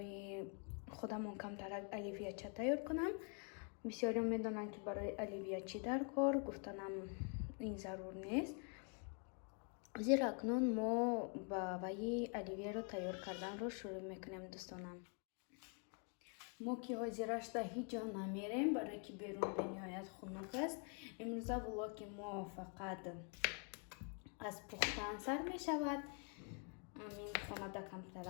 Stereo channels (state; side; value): quieter; right; 39.9 dB